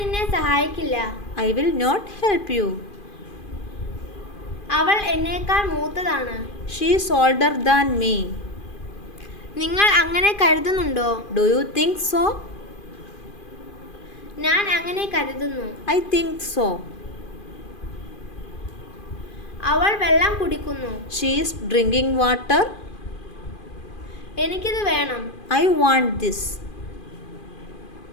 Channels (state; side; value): late; right; 2.4 ms